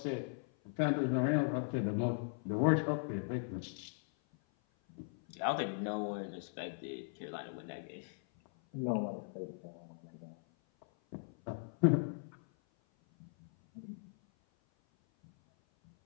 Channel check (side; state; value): right; silent; 52 dB below the other